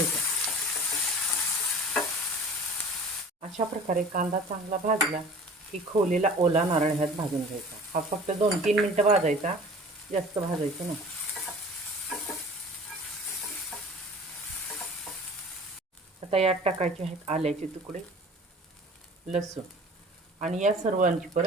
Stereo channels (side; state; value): both; normal; correlation 0.43